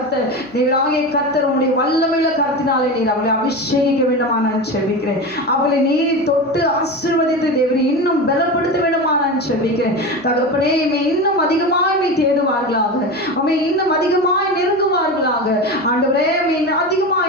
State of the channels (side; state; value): right; noise; hum, 27 dB below the sound